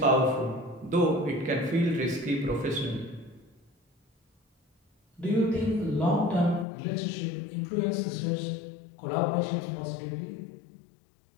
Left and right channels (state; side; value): drops out; right; at 6.7 s